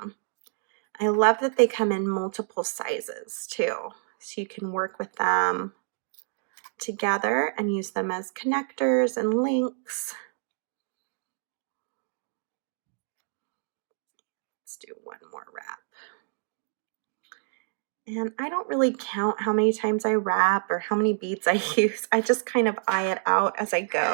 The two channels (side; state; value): left; silent; digital silence